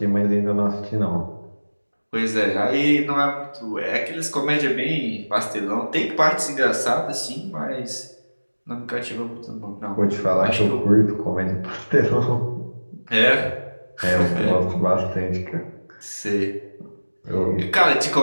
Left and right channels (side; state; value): both; inverted; correlation -1.00